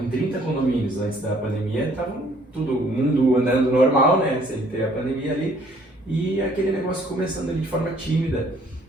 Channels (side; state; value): both; normal; correlation 0.61